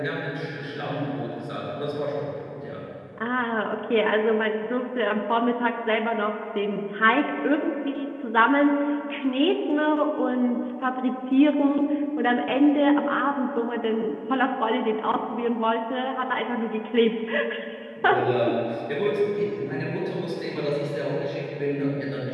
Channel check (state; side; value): identical; both; correlation 1.00